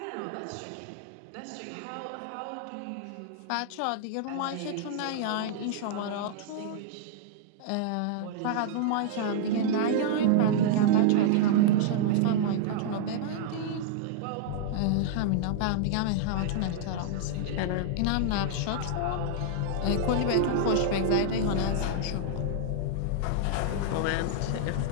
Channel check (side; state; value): both; different; correlation -0.01